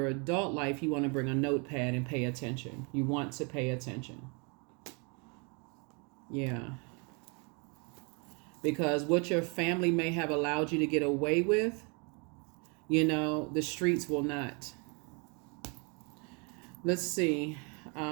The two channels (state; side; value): quieter; left; 33.3 dB